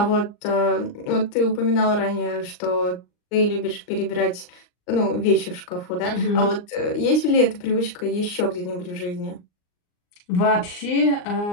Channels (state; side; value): late; right; 39 ms